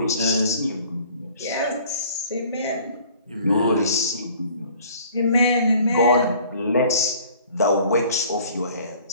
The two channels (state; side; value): inverted; both; correlation -0.52